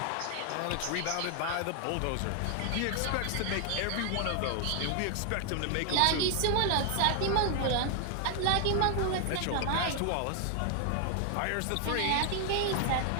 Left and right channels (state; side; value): different; both; correlation 0.00